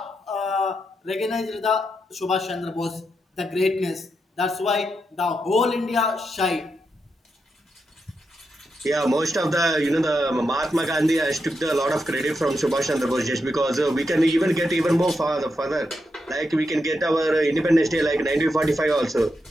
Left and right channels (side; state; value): both; normal; correlation 0.84